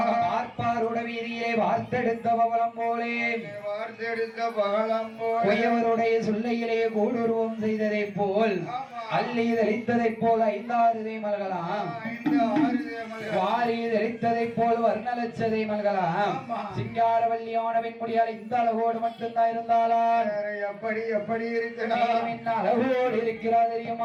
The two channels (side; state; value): both; identical; correlation 1.00